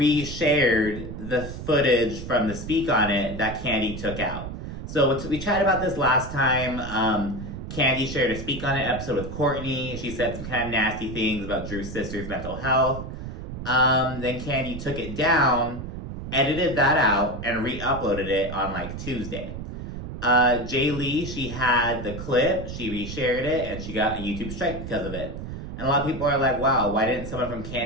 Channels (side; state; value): right; noise; rumble, 8 dB below the sound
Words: the footage from the Speak On It that Candy took out. So we chatted about this last time. Candy shared a Speak On It episode with Courtney. She said some kind of nasty things about Drew's sister's mental health. Then Candy took it down, edited that out, and re-uploaded it on like Tuesday. Jay Lee, she had the clip, she reshared it, and she got a YouTube strike because of it. And a lot of people are like, wow, why didn't someone from